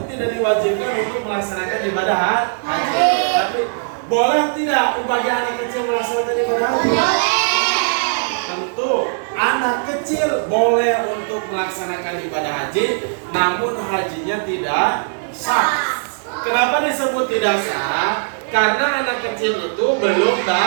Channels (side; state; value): left; silent; 60 dB below the other